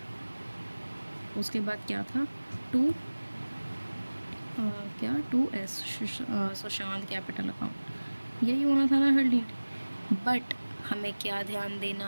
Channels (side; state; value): both; inverted; correlation -1.00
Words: उसके बाद क्या था, 2S सुशांत कैपिटल अकाउंट, यही होना था ना हरलीन। बट हमें क्या ध्यान